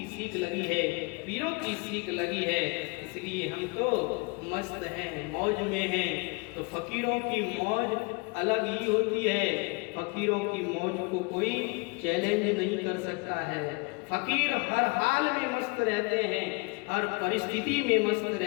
सीख लगी है, पीरों की सीख लगी है, इसलिए हम तो मस्त हैं, मौज में हैं। तो फकीरों की मौज अलग ही होती है, फकीरों की मौज को कोई चैलेंज नहीं कर सकता है। फकीर हर हाल में मस्त रहते हैं, हर परिस्थिति में मस्त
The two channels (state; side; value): quieter; right; 29.4 dB